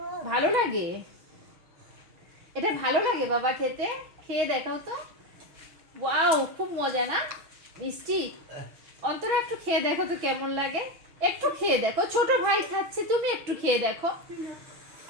ভালো লাগে? এটা ভালো লাগে বাবা খেতে? খেয়ে দেখাও তো। ওয়াও, খুব মজা না? মিষ্টি। অন্তরা একটু খেয়ে দেখো তো কেমন লাগে। একটু খেয়ে দেখো, ছোট ভাই খাচ্ছে, তুমি একটু খেয়ে দেখো।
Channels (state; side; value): late; left; 6.1 ms